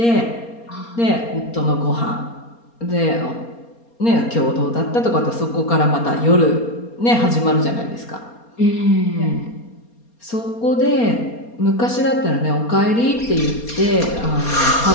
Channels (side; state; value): right; late; 4.3 ms